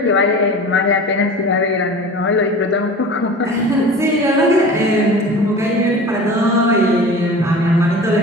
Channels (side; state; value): both; normal; correlation 0.37